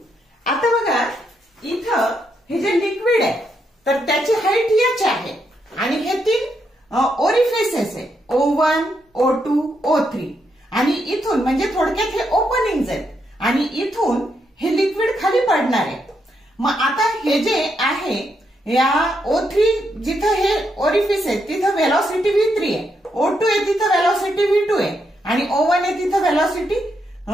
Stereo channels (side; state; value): both; normal; correlation 0.79